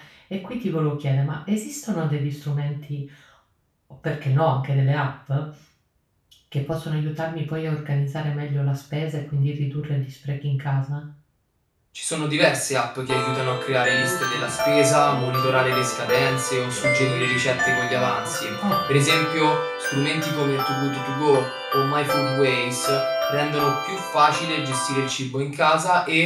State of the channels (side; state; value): both; identical; correlation 1.00